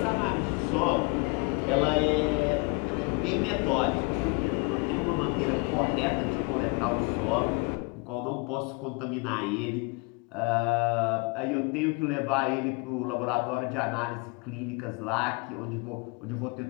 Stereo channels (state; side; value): quieter; right; 29.5 dB